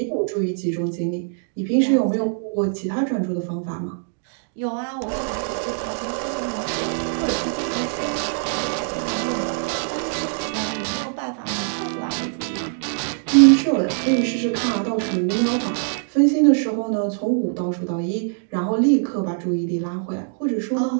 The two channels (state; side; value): silent; left; digital silence